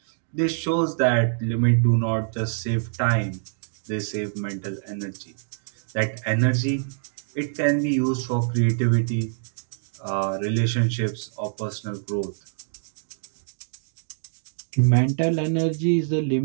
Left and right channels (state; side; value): silent; left; digital silence